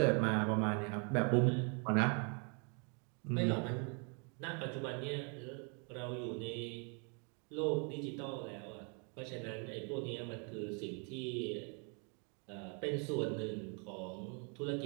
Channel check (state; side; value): quieter; left; 37.2 dB